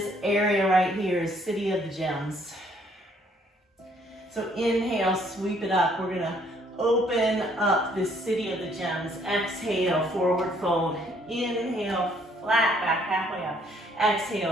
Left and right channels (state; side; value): normal; both; correlation 0.65